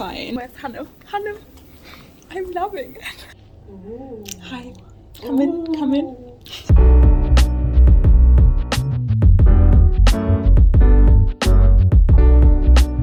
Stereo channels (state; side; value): identical; both; correlation 1.00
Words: Where's Hannah? Hannah, I'm loving it. Ooh. Hi. Come in. Come in.